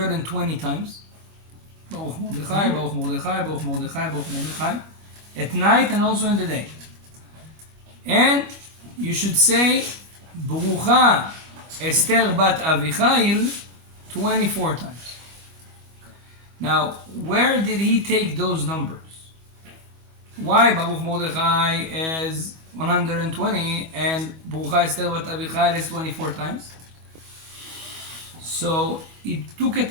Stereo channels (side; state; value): left; late; 25 ms